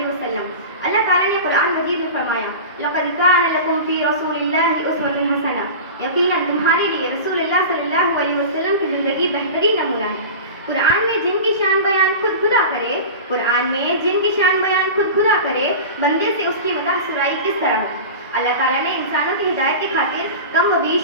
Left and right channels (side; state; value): both; inverted; correlation -0.31